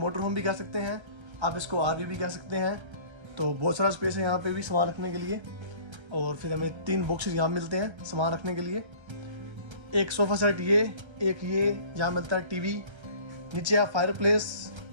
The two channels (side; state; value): left; late; 1.3 ms